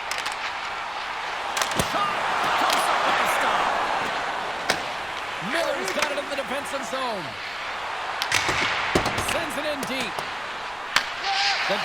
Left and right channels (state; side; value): noise; left; rumble, 25 dB below the sound